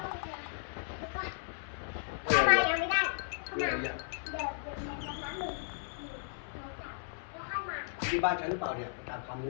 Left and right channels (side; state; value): right; silent; 54 dB below the other